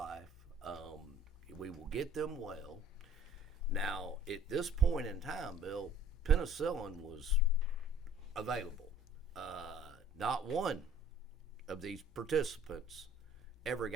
We will get them well. Now, at this point in time, Bill, penicillin was available. Not one of these participants ever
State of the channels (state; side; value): normal; both; correlation 0.53